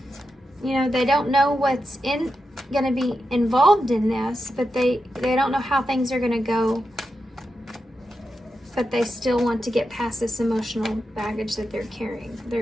You know, they don't know what's going to be involved in this, but they don't know how things are going to go, but they still want to get past this emotional baggage that they're carrying.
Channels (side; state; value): both; normal; correlation 0.88